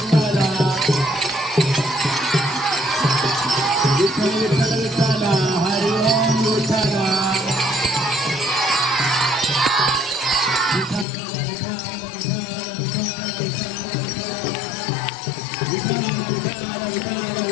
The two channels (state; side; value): drops out; right; at 11.1 s